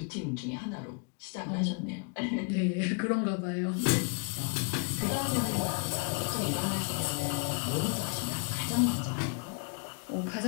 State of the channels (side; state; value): right; quieter; 36.0 dB